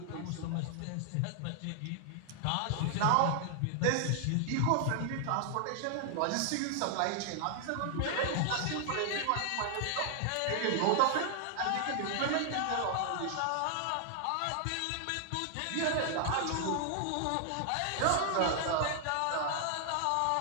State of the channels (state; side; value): different; both; correlation 0.00